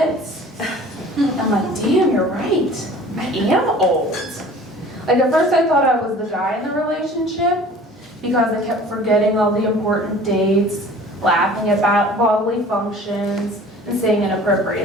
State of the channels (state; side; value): normal; both; correlation 0.46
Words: I'm like, damn, you're right. I am old. Like at first I thought I was the guy in the relationship, because I kept forgetting all the important dates, laughing about bodily functions, and saying